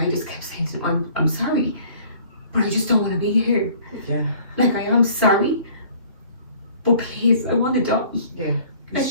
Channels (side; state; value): both; inverted; correlation -0.53